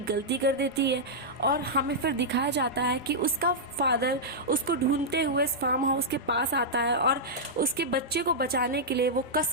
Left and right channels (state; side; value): normal; both; correlation -0.08